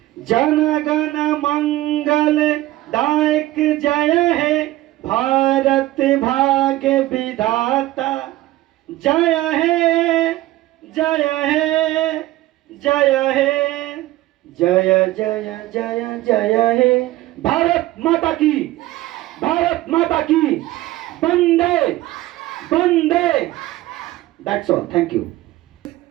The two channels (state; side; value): quieter; left; 16.6 dB